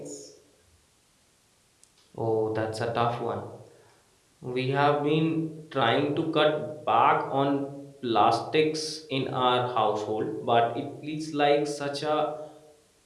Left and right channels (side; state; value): both; identical; correlation 1.00